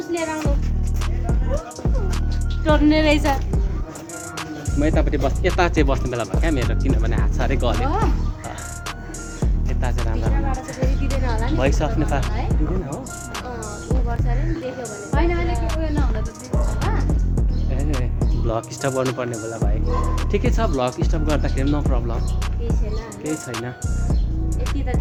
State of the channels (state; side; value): identical; both; correlation 1.00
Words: लिएर आउनु टर्ने रहेछ म यतापट्टि यता चाहिँ बस्ने बेला भयो क्या मेरो किनभने हात साह्रै गल्यो यता चाहिँ राम्रो भोइस अफ नेपाल दिँदैन हो भ्लग स्टप गर्नुपर्ने बेला भाइ ठिकै छ भ्लग स्टप गर्दाखेरि नो प्रब्लम केही छैन